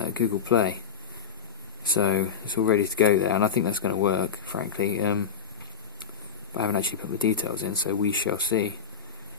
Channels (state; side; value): quieter; right; 6.9 dB